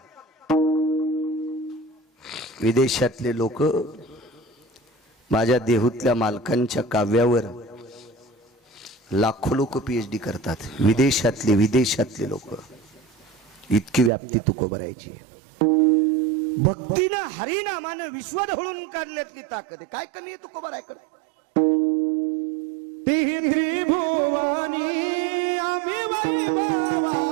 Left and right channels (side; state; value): left; drops out; at 14.1 s